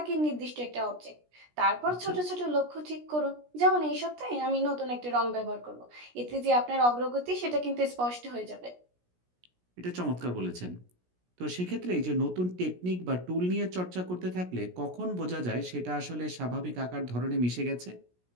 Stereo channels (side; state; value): left; late; 17 ms